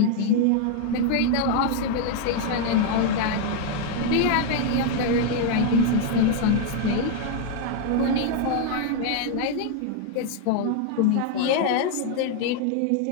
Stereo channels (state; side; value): different; both; correlation 0.00